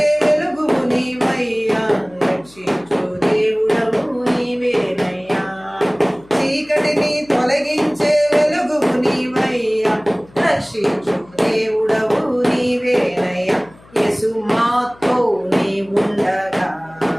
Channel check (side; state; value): left; noise; hum, 26 dB below the sound